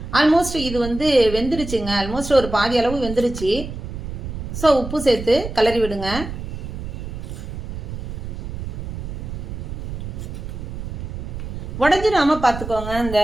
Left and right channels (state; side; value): noise; right; rumble, 7 dB below the sound